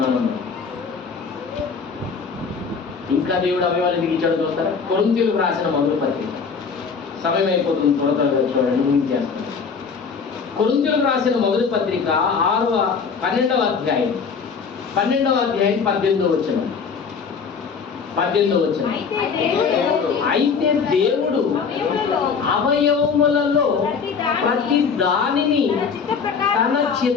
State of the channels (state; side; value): quieter; right; 5.7 dB